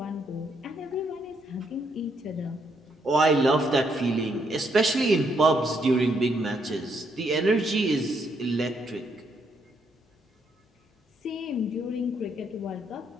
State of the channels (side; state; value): both; normal; correlation 0.74